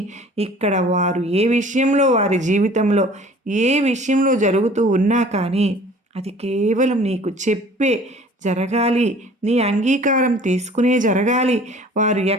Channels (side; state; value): both; normal; correlation 0.49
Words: ఇక్కడ వారు ఏ విషయంలో వారి జీవితంలో ఏ విషయంలో జరుగుతూ ఉన్నా కానీ అది కేవలం నీకు చెప్పే జరగాలి. నీ అంగీకారం తీసుకునే జరగాలి. వారు